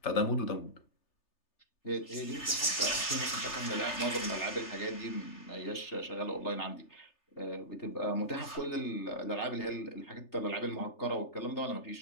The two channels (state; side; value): late; right; 3.3 ms